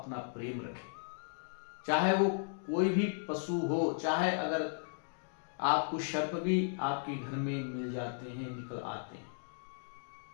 प्रेम रखें, चाहे वो कोई भी पशु हो, चाहे अगर आपको सर्प भी आपके घर में मिल जाते हैं, निकल आते हैं,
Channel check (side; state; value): right; silent; digital silence